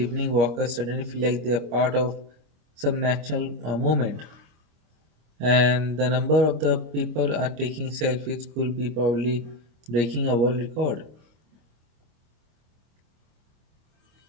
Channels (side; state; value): left; late; 26 ms